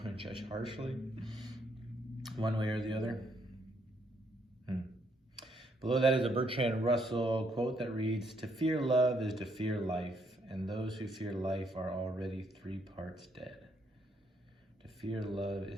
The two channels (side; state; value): both; normal; correlation 0.72